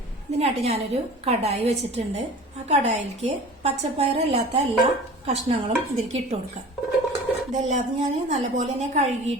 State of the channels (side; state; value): both; normal; correlation 0.40